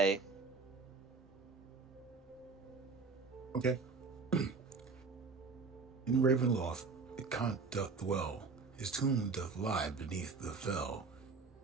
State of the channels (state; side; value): quieter; left; 4.5 dB